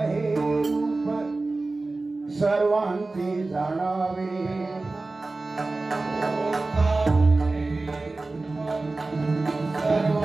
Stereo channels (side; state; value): left; quieter; 3.3 dB